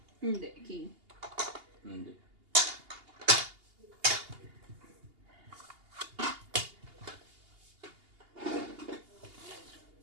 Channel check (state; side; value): late; left; 2.8 ms